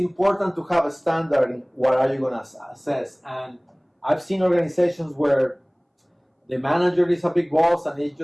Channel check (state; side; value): identical; both; correlation 1.00